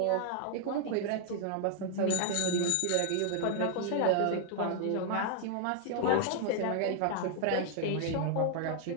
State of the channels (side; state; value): both; different; correlation 0.00